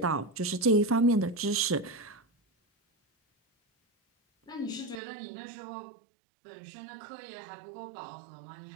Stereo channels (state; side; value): drops out; left; at 5.0 s